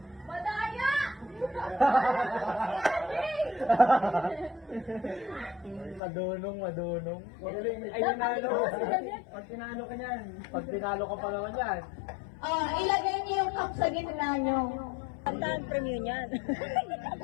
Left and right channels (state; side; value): drops out; right; at 6.0 s